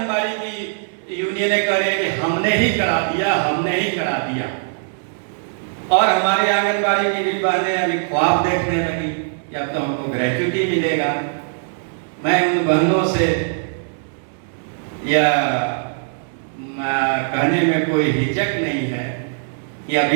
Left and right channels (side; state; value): left; silent; digital silence